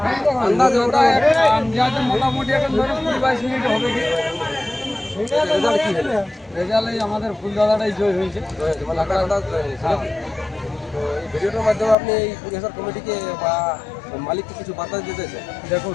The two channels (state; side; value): drops out; right; at 12.0 s